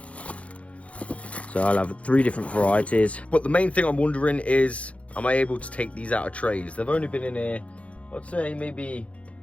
So I'll have 3 different varieties. But the main thing I'm wondering is, am I able to take these out of trays? They've only been in here, I'd say maybe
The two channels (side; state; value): right; late; 0.064 ms